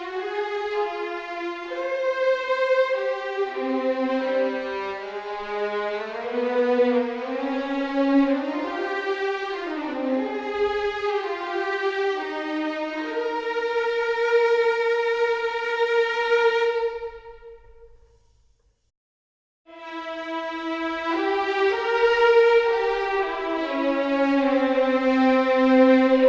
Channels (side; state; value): both; identical; correlation 1.00